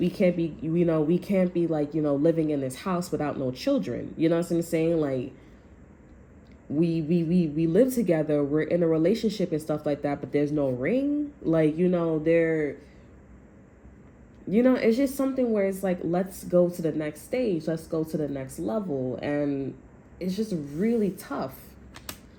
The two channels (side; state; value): both; identical; correlation 1.00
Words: can't be, you know, we can't be like, you know, living in this house without no children. You know what I'm saying? Like, we live together, we're in a relationship and stuff like that, but there's no ring. Like, you know, you know, it's just something where it's like, let's go to the next stage, let's go to the next level. And it's just really tough.